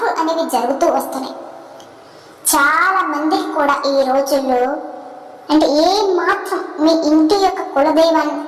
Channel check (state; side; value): identical; both; correlation 1.00